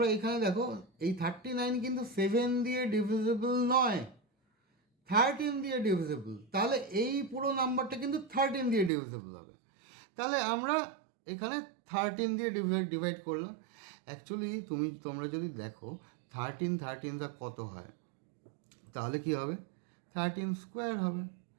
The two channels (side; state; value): left; drops out; at 8.9 s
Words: এখানে দেখো, এই 39 কিন্তু 7 দিয়ে ডিভিজিবল নয়, 13 দিয়ে ডিভিজিবল। তাহলে এই পুরো নাম্বারটা কিন্তু 13 দিয়ে ডিভিজিবল হবে। তাহলে আমরা এখানে 13 দিয়ে ডিভাইড করলাম। অ্যাকচুয়ালি তোমরা যদি দেখো 13 কত হয়, তাহলে কি হবে? 13 স্কোয়ার হবে।